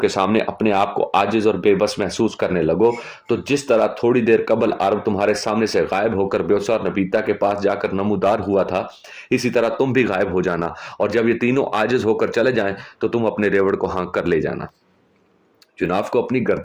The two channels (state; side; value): identical; both; correlation 1.00